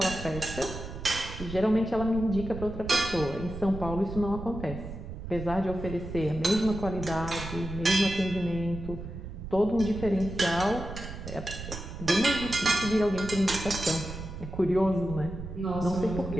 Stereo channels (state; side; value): noise; right; rumble, 9 dB below the sound